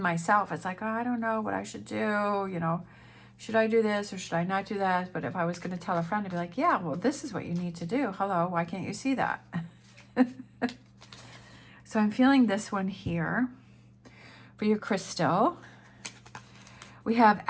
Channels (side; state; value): both; identical; correlation 1.00